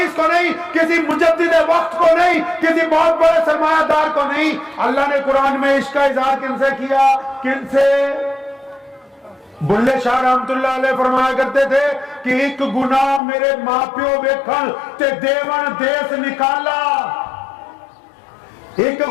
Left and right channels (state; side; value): drops out; right; at 13.2 s